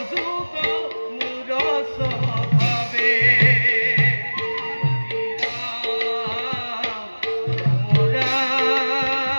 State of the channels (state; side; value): inverted; both; correlation -1.00